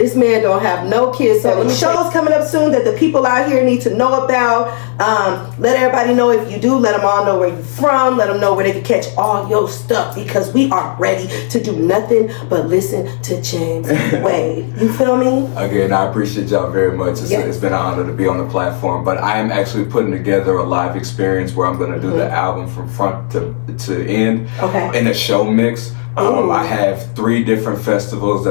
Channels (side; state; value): right; silent; digital silence